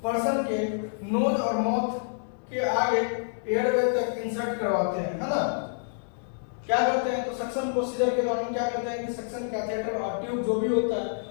पर्सन के नोज और माउथ के आगे एयरवे तक इंसर्ट करवाते हैं, है ना। क्या करते हैं, तो सक्शन प्रोसीजर के दौरान क्या करते हैं कि सक्शन कैथेटर और ट्यूब जो भी होता है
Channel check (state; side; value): silent; right; digital silence